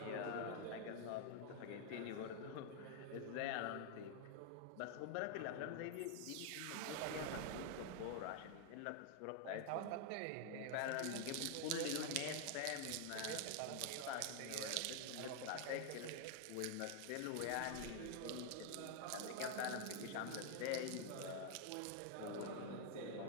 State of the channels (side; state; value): both; different; correlation 0.00